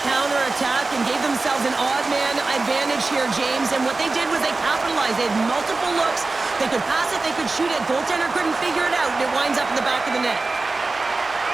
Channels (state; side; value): quieter; left; 3.5 dB